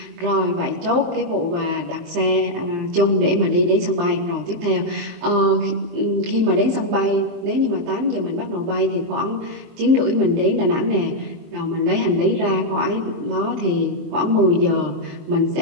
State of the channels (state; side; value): late; left; 23 ms